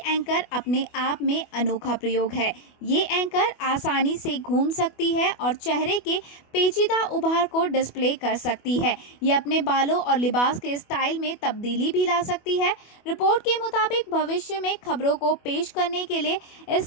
एंकर अपने आप में अनोखा प्रयोग है। ये एंकर आसानी से घूम सकती है और चेहरे के पेचीदा उभार को डिस्प्ले कर सकती है। ये अपने बालों और लिबास के स्टाइल में तब्दीली भी ला सकती है। रिपोर्ट के मुताबिक भविष्य में खबरों को पेश करने के लिए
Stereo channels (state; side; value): late; right; 24 ms